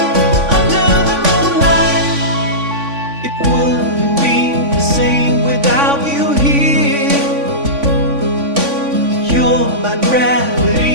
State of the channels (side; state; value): left; late; 3.5 ms